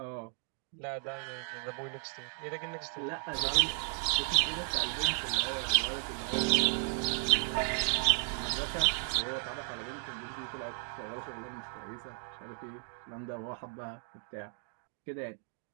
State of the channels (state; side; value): silent; left; 55 dB below the other